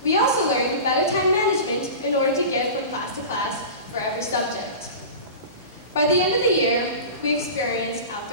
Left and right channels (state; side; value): inverted; both; correlation -0.32